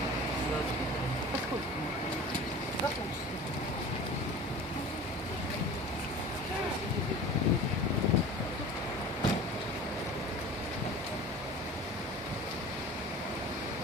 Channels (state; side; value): normal; both; correlation 0.39